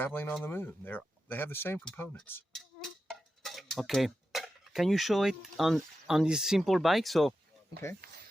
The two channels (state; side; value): normal; both; correlation 0.91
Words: on the moon, they have the same components. Okay. Can you show it on this simple bike? So Okay.